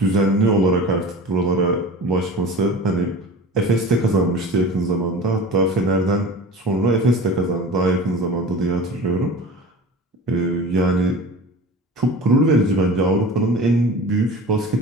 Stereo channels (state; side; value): normal; both; correlation 0.36